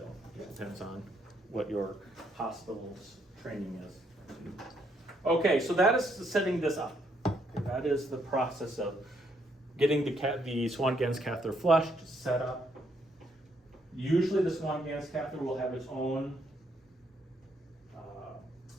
It depends on what your hospital's training is. Okay, so that is setting this up. Okay, that is the process of getting the Swan-Ganz catheter flushed, set up. Usually the Swan-Ganz catheter will have its own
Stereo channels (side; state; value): both; normal; correlation 0.73